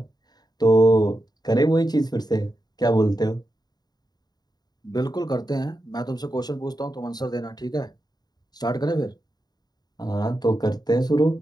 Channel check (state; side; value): late; right; 0.20 ms